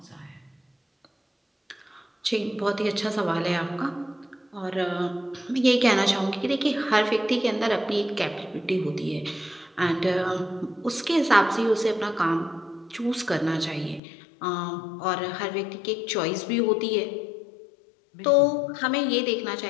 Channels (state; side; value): drops out; right; at 14.0 s